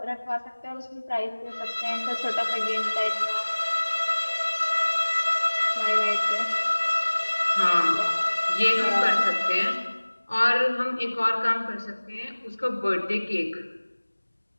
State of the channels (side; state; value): both; inverted; correlation -1.00